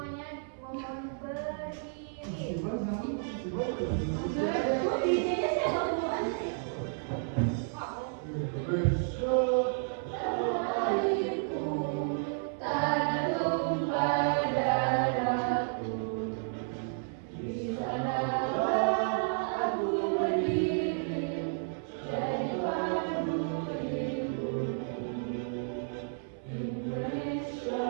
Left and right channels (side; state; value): left; silent; 57 dB below the other